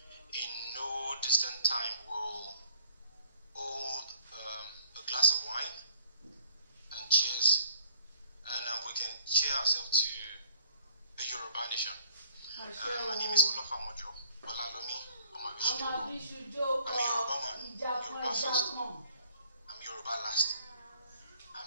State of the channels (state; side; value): inverted; both; correlation -0.59